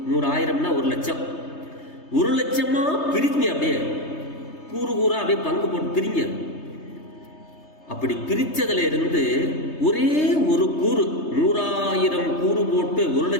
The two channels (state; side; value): late; right; 3.3 ms